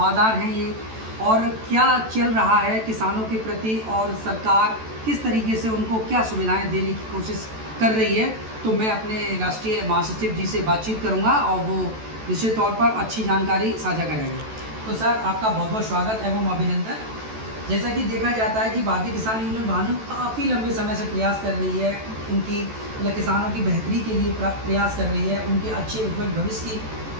हैं ये, और क्या चल रहा है किसानों के प्रति और सरकार किस तरीके से उनको क्या सुविधाएं देने की कोशिश कर रही है। तो मैं अपने राष्ट्रीय महासचिव जी से बातचीत करूंगा और वो निश्चित तौर पर अच्छी जानकारी साझा करेंगे। तो सर, आपका बहुत बहुत स्वागत एवं अभिनंदन। जैसा कि देखा जाता है कि भारतीय किसान यूनियन भानु काफ़ी लंबे समय से प्रयास कर रही है, उनकी किसानों की बेहतरी के लिए प्रयास कर रही है, उनके अच्छे उज्ज्वल भविष्य की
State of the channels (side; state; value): left; late; 14 ms